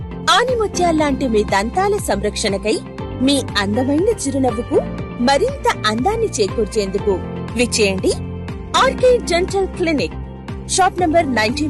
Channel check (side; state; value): both; identical; correlation 1.00